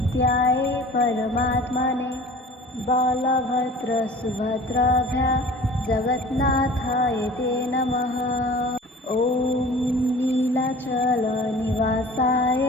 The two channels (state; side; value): normal; both; correlation 0.43